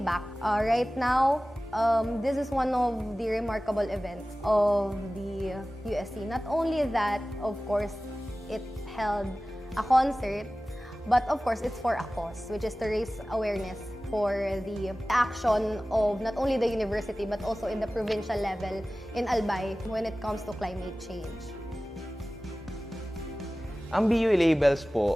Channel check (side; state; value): both; normal; correlation 0.97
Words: back, right now, this is one of the remarkable events of the USC. Not only that, of course, it held a concert, but of course, it's for a cause, which is to raise awareness for the action of not only the university, but also in the provincial level in Albay when it comes to climate change. Ang BU Labels